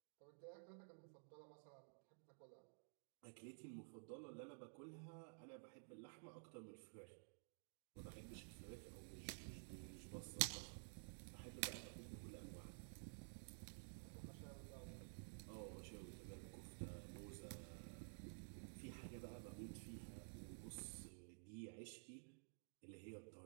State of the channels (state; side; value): silent; left; digital silence